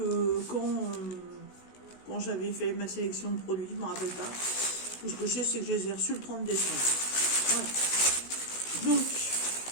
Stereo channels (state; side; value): late; right; 16 ms